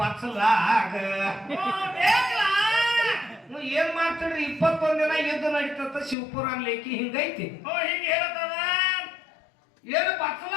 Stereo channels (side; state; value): right; drops out; at 6.2 s